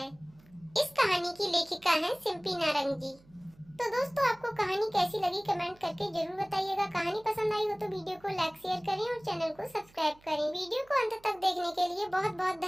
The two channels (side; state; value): right; noise; hum, 28 dB below the sound